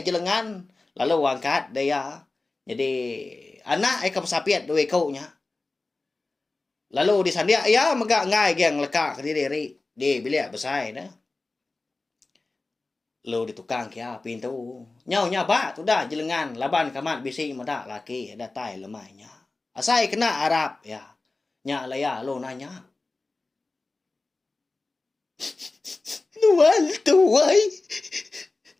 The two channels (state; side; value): quieter; right; 3.4 dB